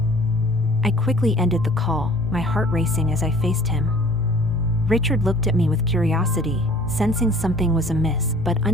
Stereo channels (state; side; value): normal; both; correlation 0.52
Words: I quickly ended the call, my heart racing as I faced him. Richard looked at me with curiosity, sensing something was amiss but